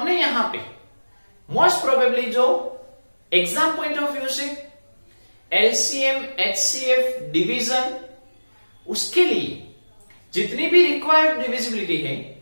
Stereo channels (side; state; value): both; inverted; correlation -1.00